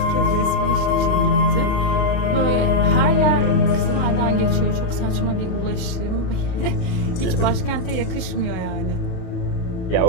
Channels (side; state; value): right; late; 33 ms